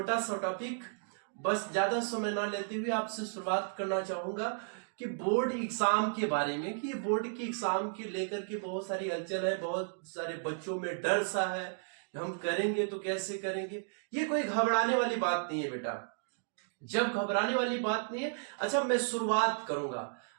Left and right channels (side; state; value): left; silent; digital silence